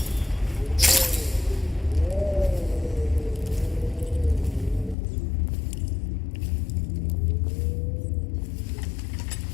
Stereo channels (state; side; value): drops out; right; at 5.0 s